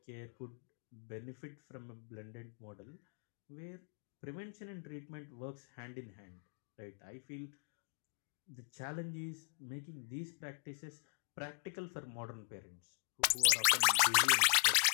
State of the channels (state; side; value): silent; right; digital silence